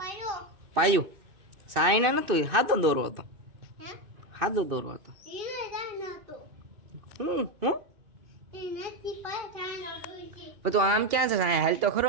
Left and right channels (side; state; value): left; late; 2.5 ms